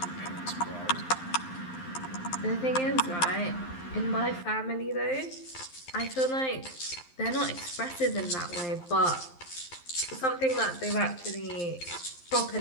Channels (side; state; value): right; late; 11 ms